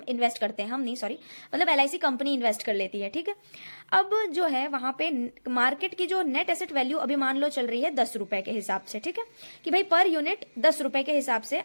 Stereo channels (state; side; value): inverted; both; correlation -1.00